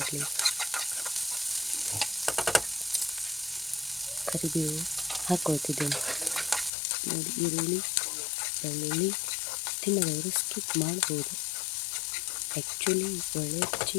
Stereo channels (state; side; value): drops out; right; at 6.7 s